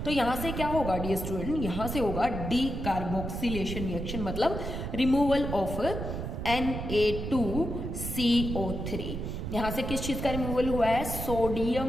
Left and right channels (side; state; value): right; noise; rumble, 5 dB below the sound